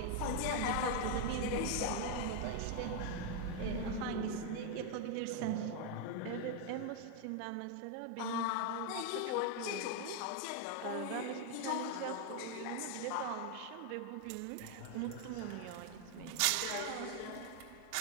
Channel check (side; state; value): both; different; correlation 0.00